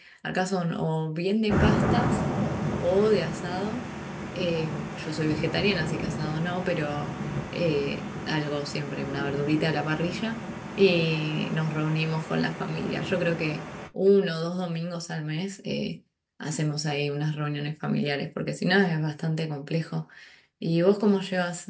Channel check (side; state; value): both; identical; correlation 1.00